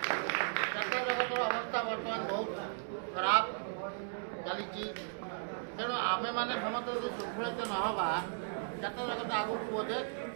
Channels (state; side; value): silent; left; digital silence